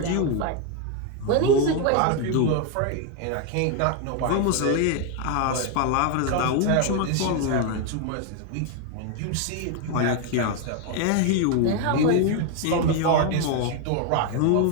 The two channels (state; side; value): different; both; correlation 0.01